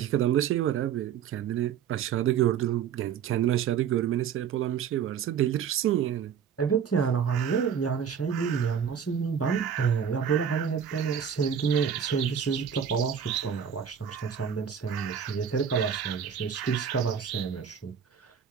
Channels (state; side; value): quieter; left; 7.9 dB